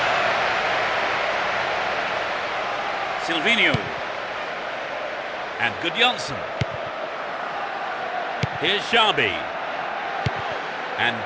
Silvinho. And Gudjonsson. Here's Xabi. And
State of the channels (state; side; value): identical; both; correlation 1.00